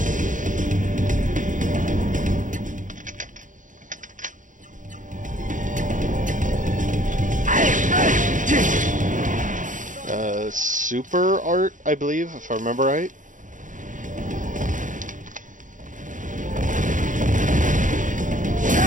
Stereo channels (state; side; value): late; left; 0.37 ms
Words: Super art, I believe, if I remember right.